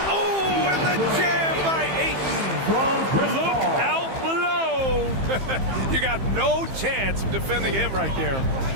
Oh, and the jam by Ayton. Look out below. You got no chance of defending him right there.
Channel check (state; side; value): late; left; 15 ms